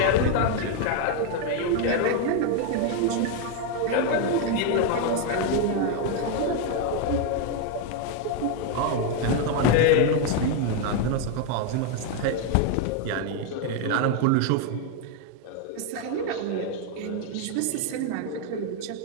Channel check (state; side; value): different; both; correlation 0.01